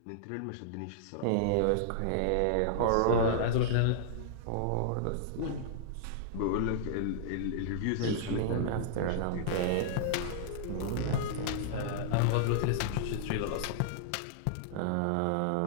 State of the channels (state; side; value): different; both; correlation -0.01